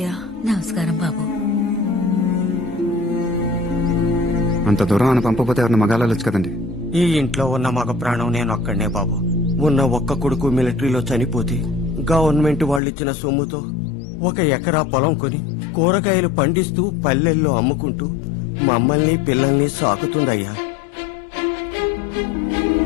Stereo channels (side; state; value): right; drops out; at 12.8 s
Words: నమస్కారం బాబు. అంత దూరం అని పంపపోతే ఎవరిని మగాలొచ్చు కదండి. ఈ ఇంట్లో ఉన్న మగ ప్రాణం నేను ఒక్కడనే బాబు. ఉన్న ఒక్క కొడుకు మిలిటరీలో చనిపోతే గవర్నమెంట్ వాళ్ళిచ్చిన సొమ్ముతో 1 ఎకరా పొలం కొని కూరగాయలు పండిస్తూ పల్లెల్లో అమ్ముకుంటూ మమ్మల్ని పిల్లల్ని సాకుతుందయ్యా.